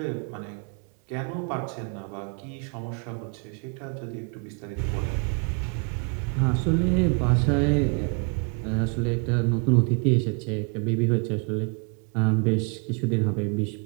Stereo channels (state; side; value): quieter; left; 36.3 dB